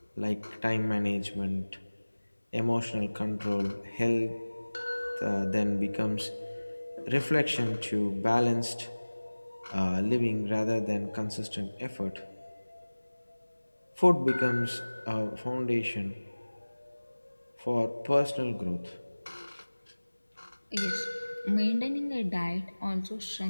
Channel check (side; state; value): both; inverted; correlation -1.00